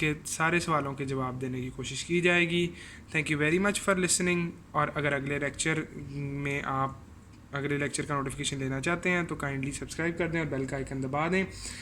सारे सवालों के जवाब देने की कोशिश की जाएगी। Thank you very much for listening. और अगर अगले लेक्चर में आप अगले लेक्चर का नोटिफिकेशन लेना चाहते हैं तो काइंडली सब्सक्राइब कर दें और बेल का आइकन दबा दें।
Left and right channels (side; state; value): both; identical; correlation 1.00